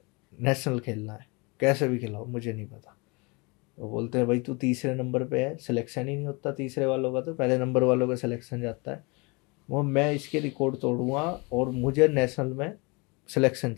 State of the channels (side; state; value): right; quieter; 28.5 dB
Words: नेशनल खेलना है, कैसे भी खिलाओ, मुझे नहीं पता। तो बोलते हैं भाई तू तीसरे नंबर पे है, सिलेक्शन ही नहीं होता तीसरे वालों का, तो पहले नंबर वालों का सिलेक्शन जाता है। वो मैं इसके रिकॉर्ड तोड़ूंगा और मुझे नेशनल में सिलेक्शन